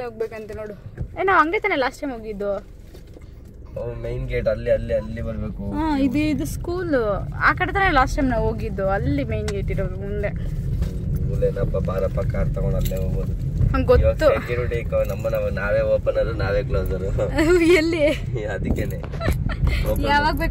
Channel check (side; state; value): both; identical; correlation 1.00